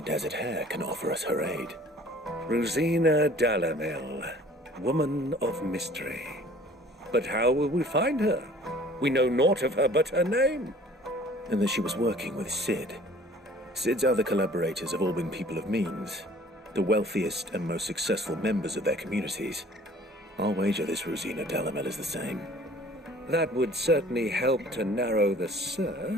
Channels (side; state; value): both; normal; correlation 0.51